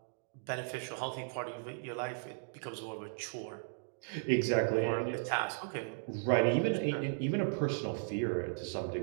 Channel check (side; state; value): left; silent; digital silence